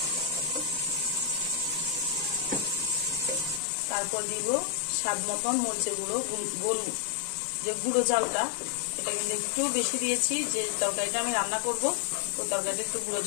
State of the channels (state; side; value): drops out; right; at 3.6 s